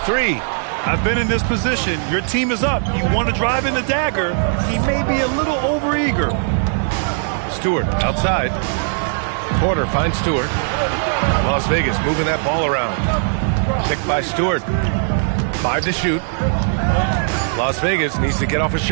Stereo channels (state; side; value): silent; left; digital silence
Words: 3. I've been in this position. Your team is up. You want to drive in the dagger. He may be a little overeager. Stewart outside. Porter finds Stewart. Las Vegas moving that ball around. Picked by Stewart. 5 to shoot. Las Vegas needs to get off a